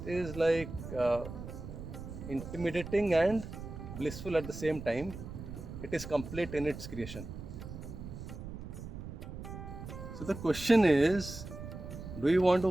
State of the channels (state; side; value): noise; right; rumble, 10 dB below the sound